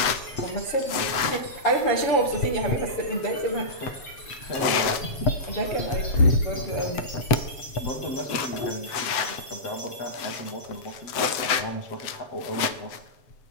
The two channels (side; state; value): right; late; 7.9 ms